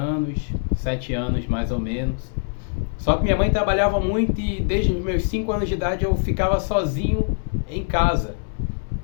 7 anos mais ou menos. Só que minha mãe trabalhava muito e desde os meus 5 anos de idade eu ficava sozinho em casa.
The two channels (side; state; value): right; silent; digital silence